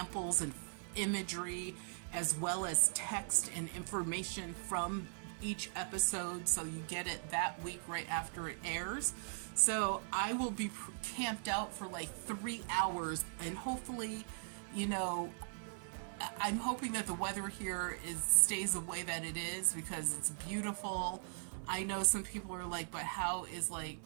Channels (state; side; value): silent; left; digital silence